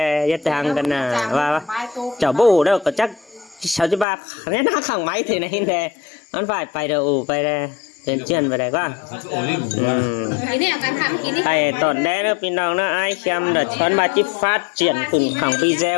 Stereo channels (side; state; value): right; drops out; at 4.0 s